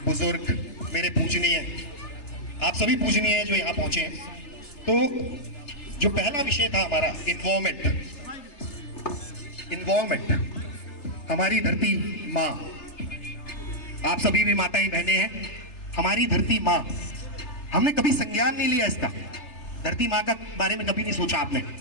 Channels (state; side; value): late; right; 3.3 ms